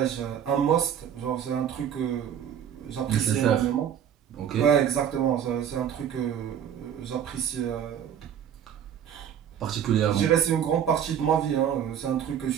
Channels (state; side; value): quieter; left; 9.1 dB